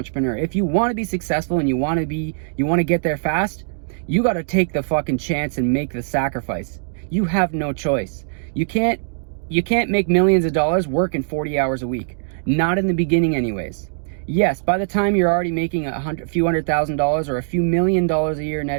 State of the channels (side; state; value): left; silent; digital silence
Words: If you want to be successful and you want to get there fast, you got to take the fucking chance and make the sacrifice. You have no choice. You can't make millions of dollars working 40 hours a week. Not in the beginning anyways. Yes, by the time you're already making a few $100,000 or a few $1 million a year